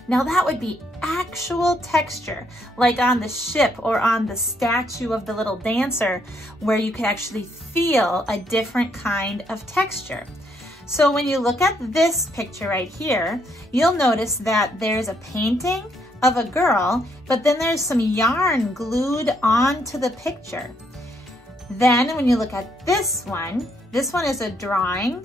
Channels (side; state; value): both; normal; correlation 0.73